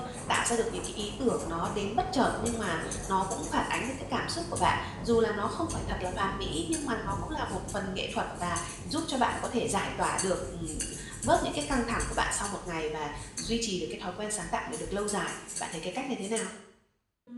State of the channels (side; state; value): both; identical; correlation 1.00